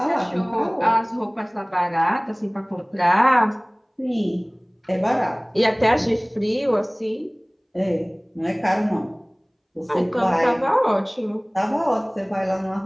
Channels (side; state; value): both; identical; correlation 1.00